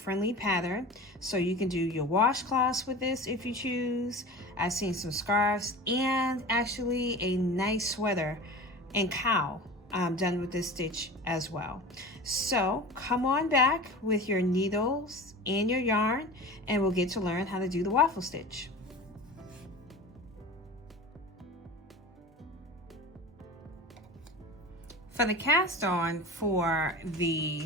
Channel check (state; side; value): normal; both; correlation 0.35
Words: pattern, so you can do your washcloths with this if you choose. I've seen some scarves and actually a nice sweater and cowl done with this stitch as well. So come on back with your needles and your yarn and we'll get to learn how to do the waffle stitch. For the cast on for